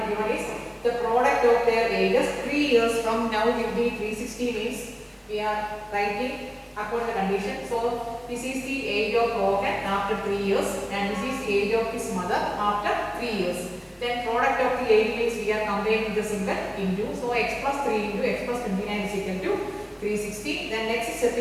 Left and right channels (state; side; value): identical; both; correlation 1.00